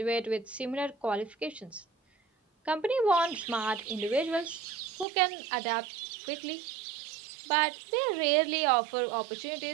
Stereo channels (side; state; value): left; drops out; at 5.1 s